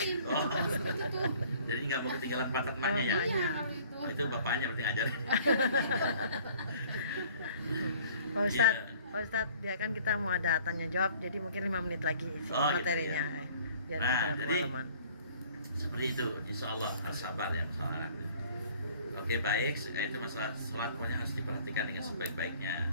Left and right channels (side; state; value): both; inverted; correlation -0.54